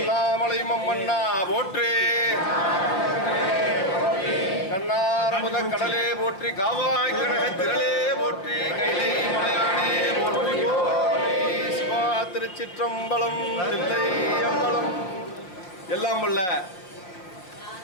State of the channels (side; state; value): right; late; 5.5 ms